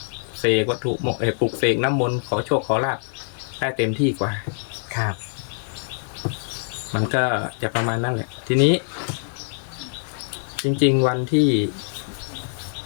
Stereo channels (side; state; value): right; silent; digital silence